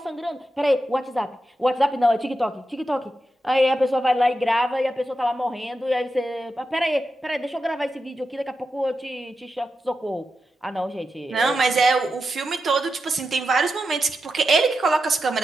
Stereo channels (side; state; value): both; normal; correlation 0.89